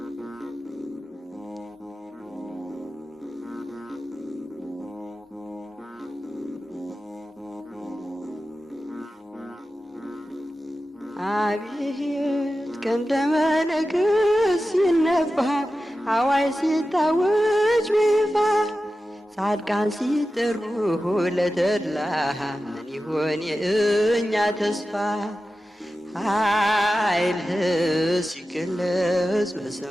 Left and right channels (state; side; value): normal; both; correlation 0.93